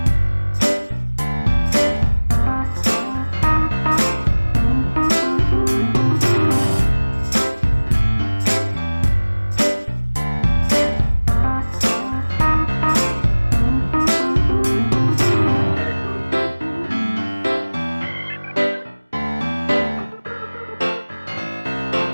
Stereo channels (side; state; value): both; inverted; correlation -1.00